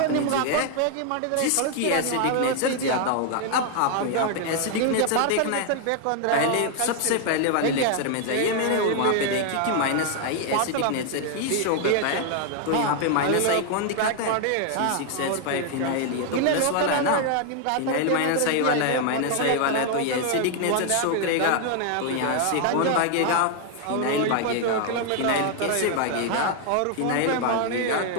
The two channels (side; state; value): both; different; correlation 0.00